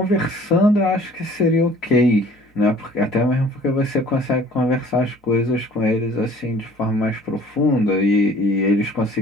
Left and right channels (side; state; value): both; normal; correlation 0.52